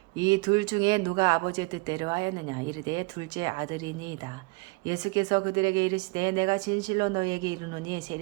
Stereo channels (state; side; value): quieter; left; 28.2 dB